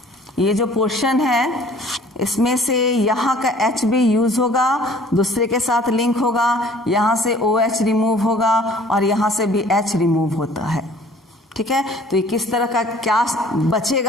ये जो पोर्शन है इसमें से यहाँ का H भी यूज होगा, दूसरे के साथ लिंक होगा, यहाँ से OH रिमूव होगा और यहाँ से भी H रिमूव होता है। ठीक है, तो ये किस तरह का क्या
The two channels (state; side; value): normal; both; correlation 0.52